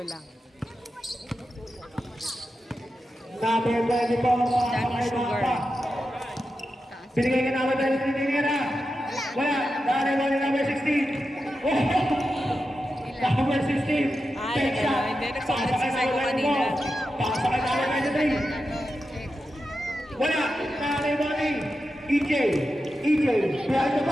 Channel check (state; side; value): normal; both; correlation 0.90